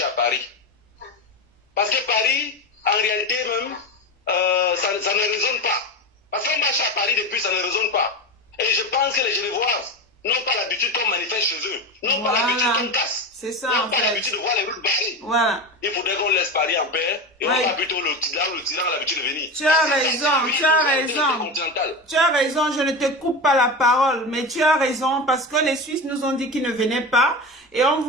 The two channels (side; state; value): both; normal; correlation 0.23